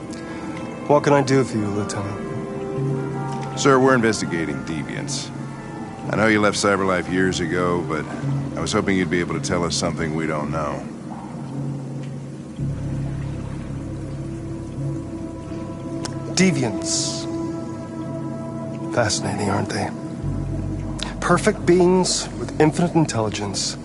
What can I do for you, Lieutenant? Sir, we're investigating deviants. I know you left CyberLife years ago, but I was hoping you'd be able to tell us something we don't know. Deviants. Fascinating, aren't they? Perfect beings with infinite intelligence.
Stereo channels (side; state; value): both; identical; correlation 1.00